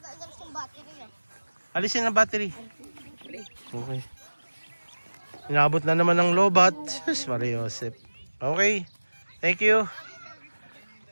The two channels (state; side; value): inverted; both; correlation -1.00